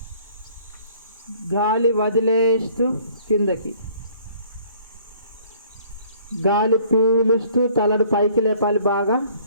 గాలి వదిలేస్తూ కిందకి. గాలి పీలుస్తూ తలను పైకి లేపాలి బాగా,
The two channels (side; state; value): both; inverted; correlation -0.57